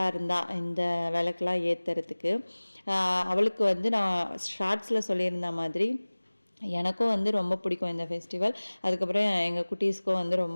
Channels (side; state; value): both; inverted; correlation -1.00